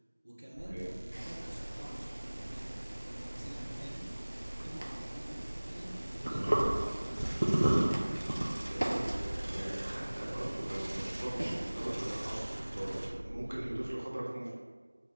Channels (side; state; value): both; inverted; correlation -1.00